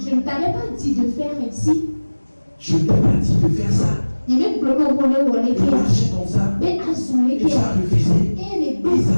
ne t'avais pas dit de faire ainsi. Je ne t'ai pas dit de faire ça. De marcher comme ça. Et tu as refusé. Ils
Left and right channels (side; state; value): both; inverted; correlation -1.00